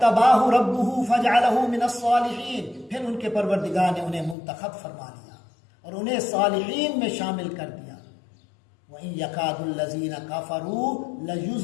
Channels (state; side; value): drops out; right; at 4.4 s